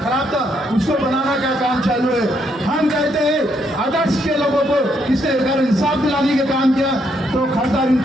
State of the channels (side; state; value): both; normal; correlation 0.74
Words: था उसको बनाना का काम चालू है। हम कहते हैं आदर्श के लोगों को किसने अगर इंसाफ दिलाने का काम किया तो खासदार